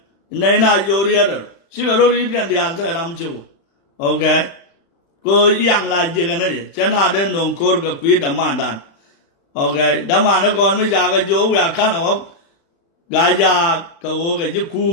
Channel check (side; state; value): right; late; 35 ms